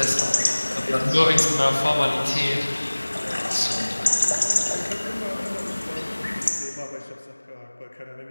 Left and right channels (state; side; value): inverted; both; correlation -1.00